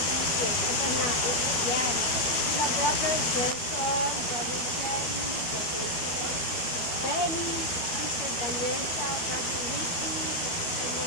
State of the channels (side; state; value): right; late; 12 ms